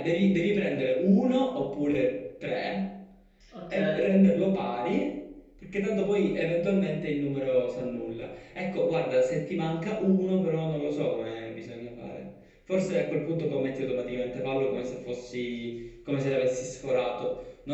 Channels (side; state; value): both; identical; correlation 1.00